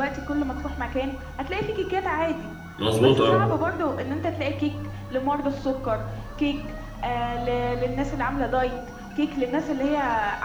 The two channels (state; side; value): identical; both; correlation 1.00